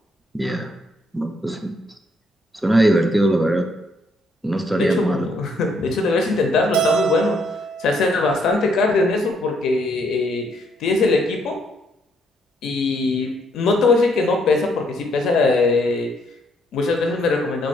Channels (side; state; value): both; normal; correlation 0.71